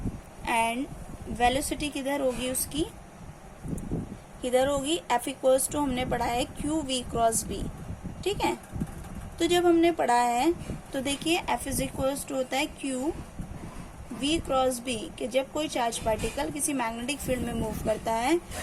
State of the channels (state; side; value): identical; both; correlation 1.00